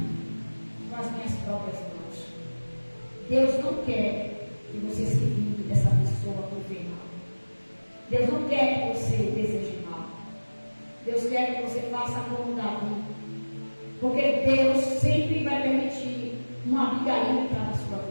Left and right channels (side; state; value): both; inverted; correlation -1.00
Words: com as minhas próprias mãos. Deus não quer que você se vingue dessa pessoa por ver mal. Deus não quer que você deseje mal. Deus quer que você faça como Davi. Porque Deus sempre vai permitir uma Abigail entrar na sua